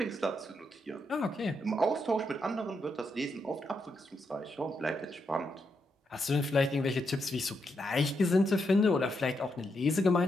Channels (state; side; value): normal; both; correlation 0.81